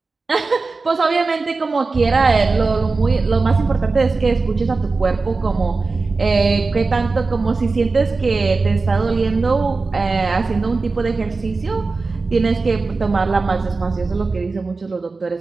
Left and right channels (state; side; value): quieter; left; 3.9 dB